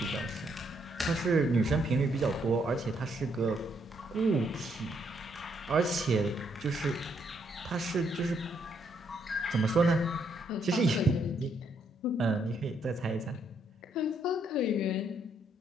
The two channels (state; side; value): normal; both; correlation 0.73